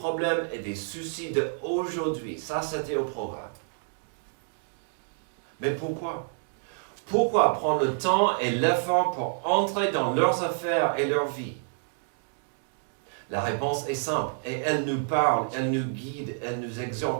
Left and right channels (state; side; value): silent; left; digital silence